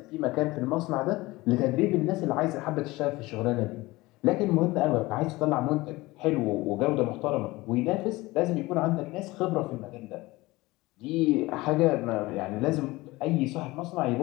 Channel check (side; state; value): right; quieter; 20.6 dB